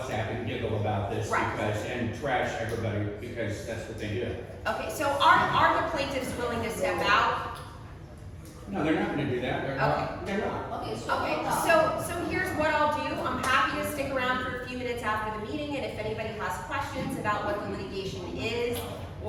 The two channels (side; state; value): both; identical; correlation 1.00